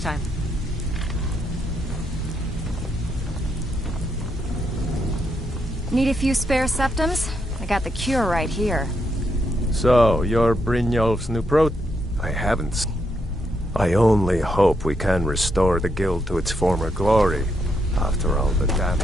Need a few spare septums? I got the cure right here. So, you're Brynjolf's new pro... I haven't. I only hope we can restore the guild to its former glory, after all the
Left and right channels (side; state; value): both; normal; correlation 0.79